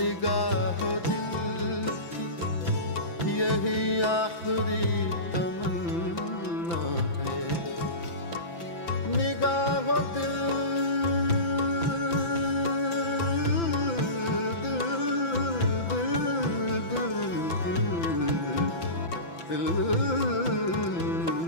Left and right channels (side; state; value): right; late; 5.9 ms